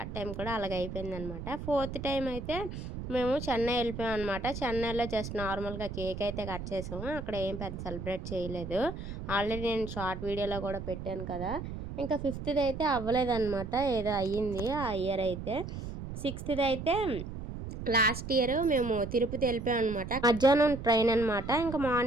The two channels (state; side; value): noise; right; rumble, 8 dB below the sound